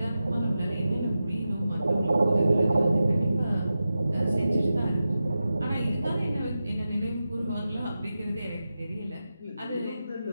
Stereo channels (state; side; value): inverted; both; correlation -0.92